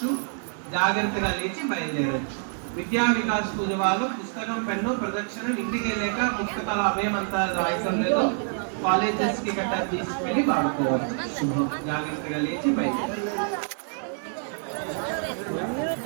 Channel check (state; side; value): silent; left; 58 dB below the other